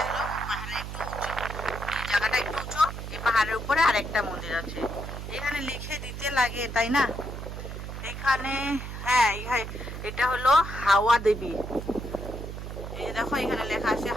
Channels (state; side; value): noise; right; hum, 8 dB below the sound